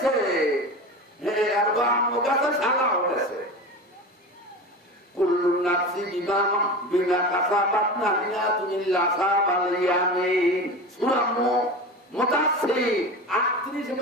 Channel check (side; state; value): both; normal; correlation 0.29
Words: আর বাম গাছে ছাড়াও গেছে। কুল্লু নাফসি বিমা কাসাবাত নাহিয়াতুন ইল্লা সাবাল ইয়ামিন সূরা মুদাসসির 38